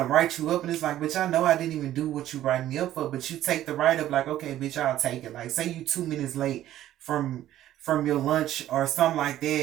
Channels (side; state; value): left; quieter; 13.0 dB